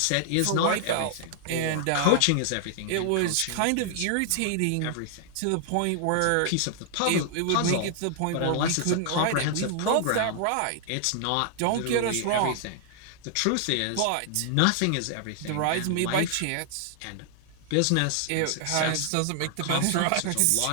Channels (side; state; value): both; different; correlation 0.00